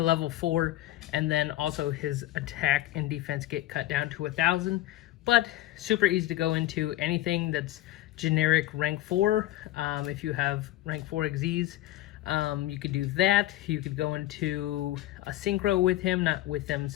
level 4, and then also his attack and defense get cut down to 1,000. But super easy to go into anything that's generic rank 4. If you have rank 4 Xyz, you could do that. You could go into a synchro with him, not with them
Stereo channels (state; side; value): quieter; right; 15.5 dB